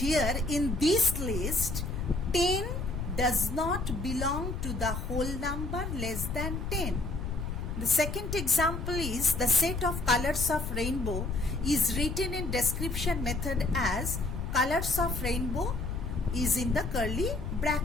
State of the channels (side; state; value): left; noise; rumble, 4 dB below the sound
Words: in this list, 10 does not belong to the whole number less than 10. The second example is the set of colors of rainbow is written in description method as colors of rainbow is in the curly